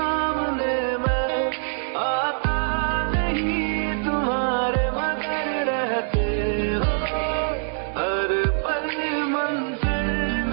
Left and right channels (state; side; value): silent; left; digital silence